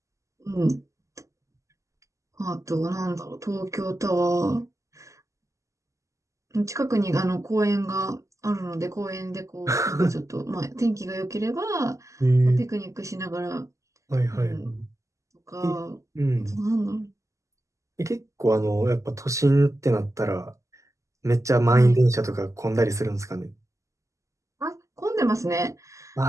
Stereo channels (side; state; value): left; late; 0.15 ms